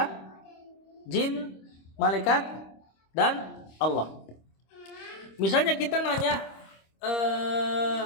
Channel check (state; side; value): late; right; 26 ms